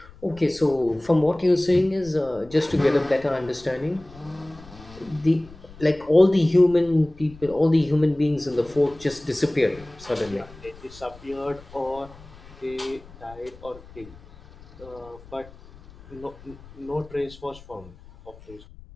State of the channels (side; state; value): left; noise; rumble, 21 dB below the sound